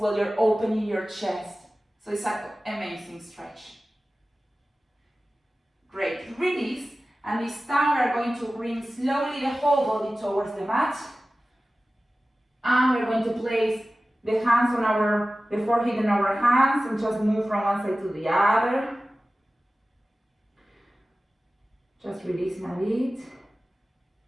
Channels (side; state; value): both; normal; correlation 0.96